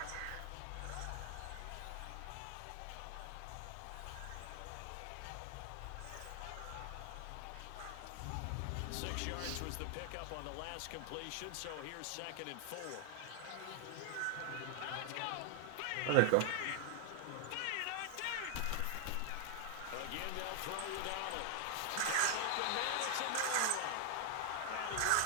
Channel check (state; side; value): different; both; correlation 0.00